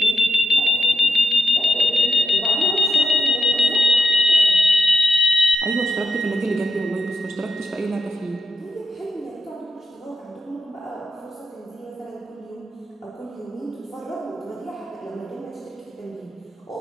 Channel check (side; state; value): both; normal; correlation 0.82